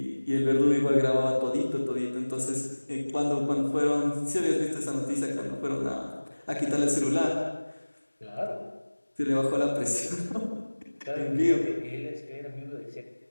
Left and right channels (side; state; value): both; inverted; correlation -1.00